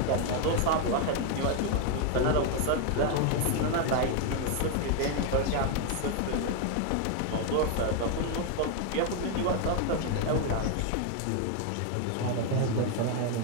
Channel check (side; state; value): both; different; correlation 0.01